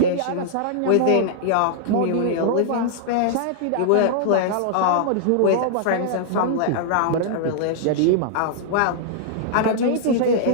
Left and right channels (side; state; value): both; different; correlation -0.01